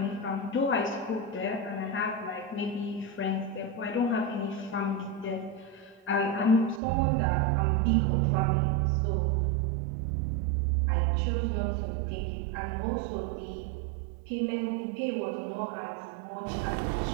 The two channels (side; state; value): left; drops out; at 6.8 s